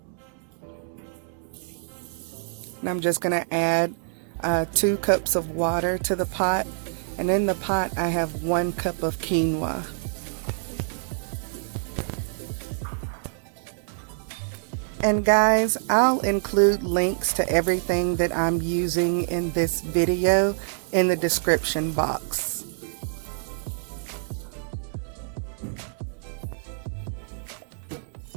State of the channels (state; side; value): silent; left; digital silence